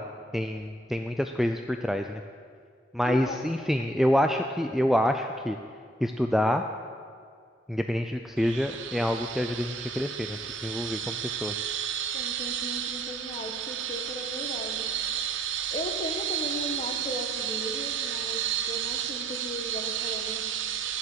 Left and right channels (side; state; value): both; normal; correlation 0.63